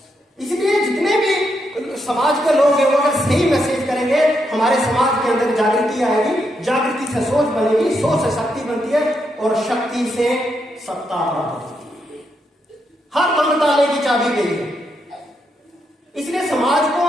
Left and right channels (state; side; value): normal; both; correlation 0.80